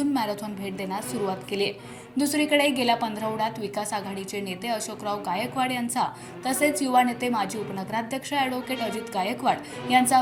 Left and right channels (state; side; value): identical; both; correlation 1.00